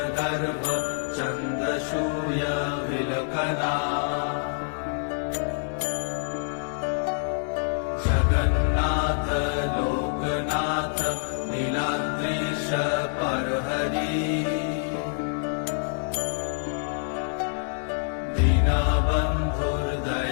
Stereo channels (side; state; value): right; silent; digital silence